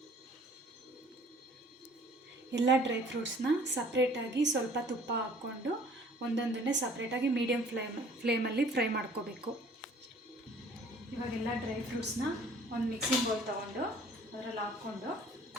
ಎಲ್ಲ ಡ್ರೈ ಫ್ರೂಟ್ಸ್ನ ಸಪ್ರೇಟಾಗಿ ಸ್ವಲ್ಪ ತುಪ್ಪ ಹಾಕ್ಕೊಂಡು ಒಂದೊಂದನ್ನೇ ಸಪ್ರೇಟಾಗಿ ಮೀಡಿಯಮ್ ಫ್ಲೇಮಲ್ಲಿ ಫ್ರೈ ಮಾಡ್ಕೋಬೇಕು. ಇವಾಗೆಲ್ಲ ಡ್ರೈ ಫ್ರೂಟ್ಸ್ನ ಒಂದು ಮಿಕ್ಸಿಂಗ್ ಬೌಲ್ ತೊಗೊಂಡು ಅದರಲ್ಲಿ ಹಾಕ್ಕೊಂಡು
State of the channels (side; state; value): both; normal; correlation 0.53